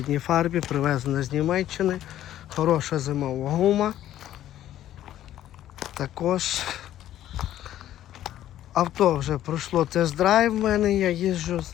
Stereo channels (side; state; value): right; quieter; 12.4 dB